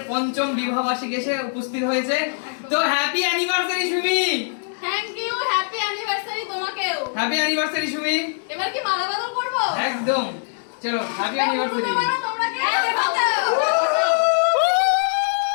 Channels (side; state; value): right; silent; digital silence